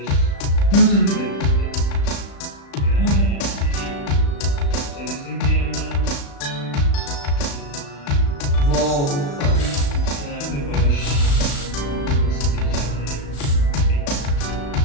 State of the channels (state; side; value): late; right; 35 ms